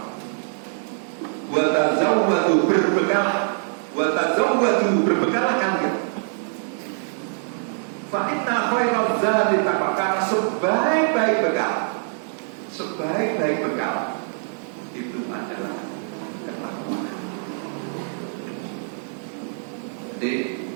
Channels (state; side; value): silent; left; digital silence